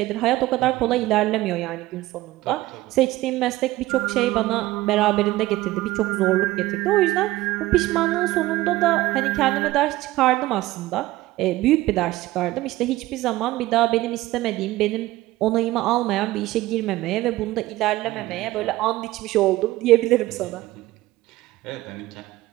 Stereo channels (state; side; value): quieter; left; 17.3 dB